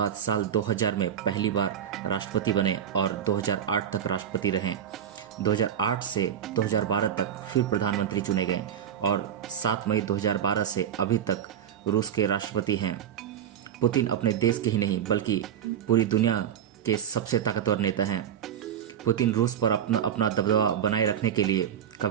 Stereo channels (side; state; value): left; quieter; 9.2 dB